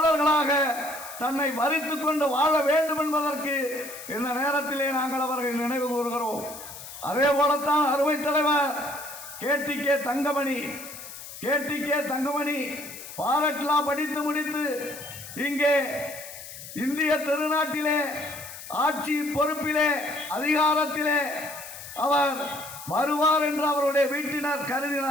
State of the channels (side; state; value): left; noise; hiss, 13 dB below the sound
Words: தன்னை வரித்து கொண்டு வாழ வேண்டும் என்பதற்கு இந்த நேரத்திலே நாங்கள் அவர்களை நினைவு கூறுகிறோம். அதே போலத்தான் அருமை தலைவர் கேடிகே தங்கமணி பாரட்லா படித்து முடித்து இங்கே இந்திய திருநாட்டிலே ஆட்சி பொறுப்பிலே அதிகாரத்திலே அவர் வருவார் என்று அவருடைய வீட்டினர்